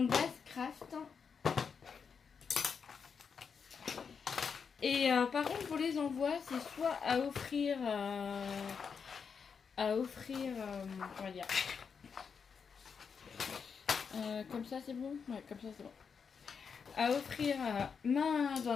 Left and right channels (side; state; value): right; quieter; 6.1 dB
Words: base craft. Et par contre, pour les envois, c'est soit à offrir, comment dire, comme ça c'est bon, ouais, comme ça c'est bon. À offrir main dans